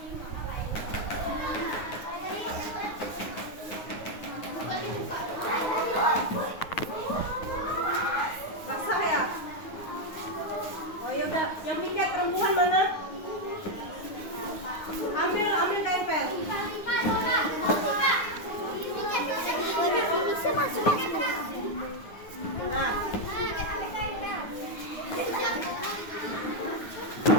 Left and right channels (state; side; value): late; right; 9.6 ms